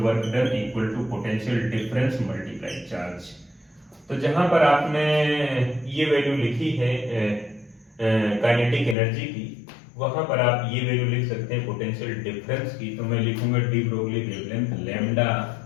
work done equal to potential difference multiply charge. तो जहां पर आपने ये वैल्यू लिखी है काइनेटिक एनर्जी की, वहां पर आप ये वैल्यू लिख सकते हैं पोटेंशियल डिफरेंस की। तो मैं लिखूंगा de Broglie wavelength lambda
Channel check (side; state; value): right; drops out; at 9.0 s